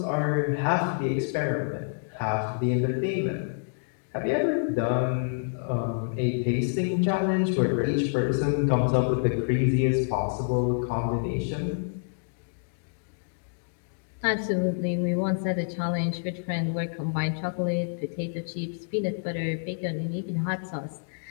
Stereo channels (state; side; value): silent; right; digital silence